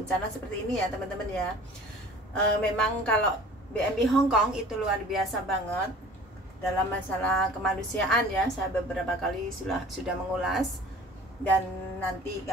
seperti ini ya teman-teman ya. Memang kalau BMI Hong Kong itu luar biasa banget dalam masalah kemanusiaan ya. Saya beberapa kali sudah mengulas, dan nanti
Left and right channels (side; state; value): both; normal; correlation 0.45